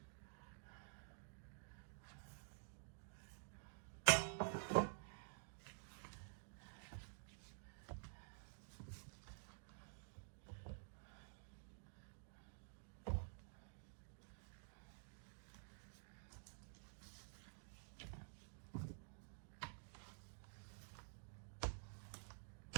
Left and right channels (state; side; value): silent; left; digital silence